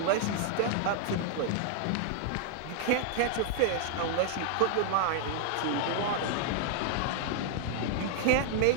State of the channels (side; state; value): both; different; correlation 0.00